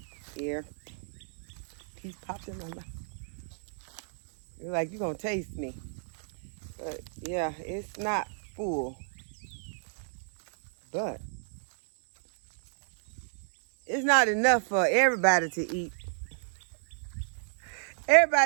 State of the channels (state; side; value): silent; left; digital silence